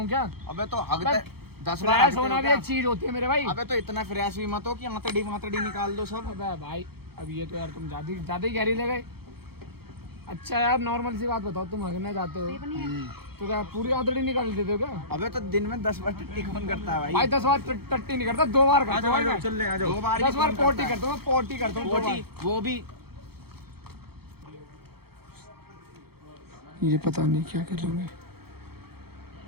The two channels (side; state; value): left; late; 0.96 ms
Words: क्या? अबे तो हगते 10 बार फ्रेश होना भी एक चीज होती है मेरे भाई। अबे तो इतना फ्रेश भी मत हो कि आंतड़ी निकाल दो सब। अबे भाई अब ये तो यार तुम ज्यादा ही गहरी ले गए। अच्छा यार नॉर्मल सी बात बताओ, तुम हगने जाते हो तो क्या पूरी आंतड़ी निकाल देते हो क्या? अबे तो दिन में 10 बार टट्टी कौन करता है भाई? भाई 10 बार टट्टी नहीं करता, 2 बार करता हूँ। चल ले आ जाओ। 2 बार 10 बार पोटी करता हूँ, पोटी करता हूँ 2 बार। वो भी ये पता नहीं क्या कर रहे हैं।